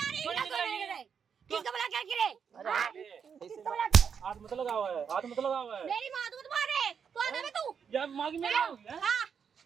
किसको बोला क्या गिरे? हाथ मत लगा हुआ है, हाथ मत लगा हुआ है। मेरी माँ तो मत मारे, तू आने में तू। यार मांगी मेरा हो गया। हाँ,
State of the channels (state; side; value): quieter; left; 6.9 dB